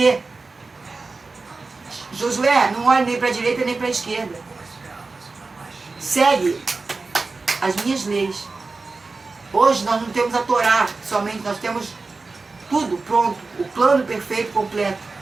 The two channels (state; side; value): quieter; left; 3.9 dB